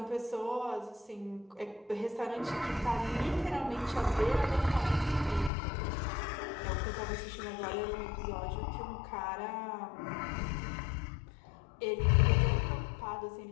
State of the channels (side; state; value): right; drops out; at 5.5 s